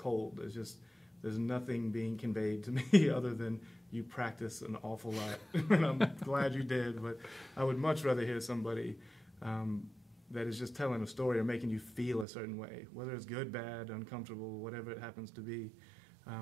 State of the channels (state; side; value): drops out; left; at 12.2 s